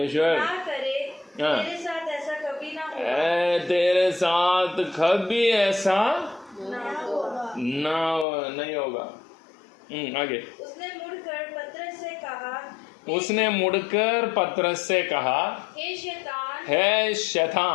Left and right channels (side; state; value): right; drops out; at 8.2 s